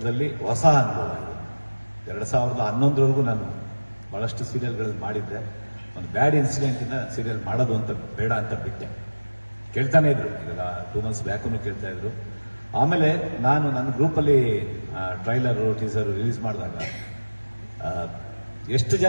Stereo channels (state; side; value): inverted; both; correlation -1.00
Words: ಹೊಸ ಅನುಭವ ಇದೆ. 2011 ನಾನು ಭಾಳಷ್ಟು ಸೀರಿಯಲ್ಗಳಲ್ಲಿ ಮಾಡಿದ್ದೆ. ಒಂದು ಬ್ಯಾಡ್ ಇನ್ಸಿಡೆಂಟಿಂದ ಸೀರಿಯಲ್ ಮಾಡೋದು ಅಂತ ಬೇಡ ಅಂತ ಬಿಟ್ಟೆ. ಕೇಳ್ತಾನೆ ಇದ್ರು, ಈಗ 2 months ಬ್ಯಾಕೂ ಕೇಳ್ತಾ ಇದ್ರು. ಆಮೇಲೆ ನಾನು ನನ್ನ ಗ್ರೂಪಲ್ಲಿ ಟ್ರೈಲರು ಟೀಸರು ರಿಲೀಸ್ ಮಾಡಿದಾಗ ಎಷ್ಟು